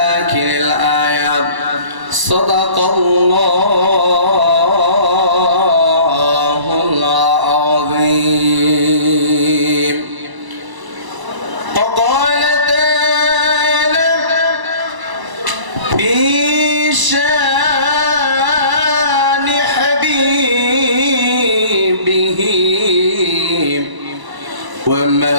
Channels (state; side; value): late; left; 1.0 ms